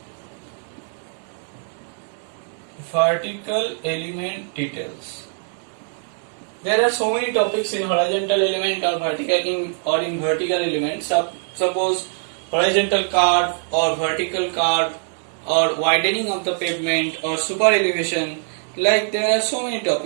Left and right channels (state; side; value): silent; left; 58 dB below the other